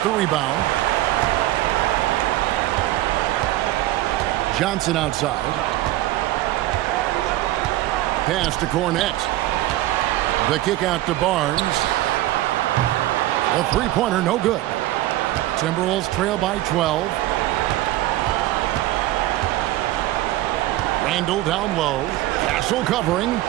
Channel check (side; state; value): left; quieter; 15.8 dB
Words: the rebound. Johnson outside. Pass to Cornette. The kick out to Barnes. The three-pointer, no good. Timberwolves trail by 12. Randall down low. Castle covering.